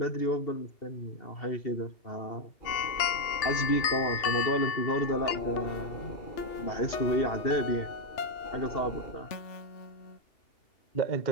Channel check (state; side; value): late; right; 2.7 ms